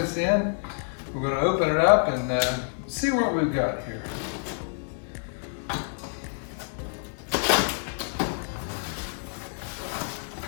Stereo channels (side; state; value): right; silent; 59 dB below the other